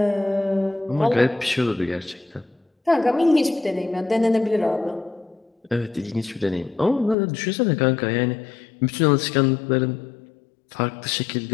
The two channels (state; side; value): drops out; right; at 7.2 s